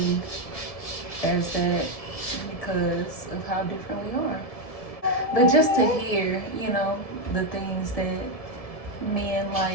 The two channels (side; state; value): right; late; 1.7 ms